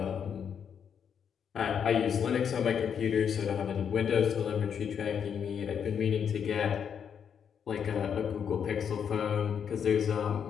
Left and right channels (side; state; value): right; quieter; 7.7 dB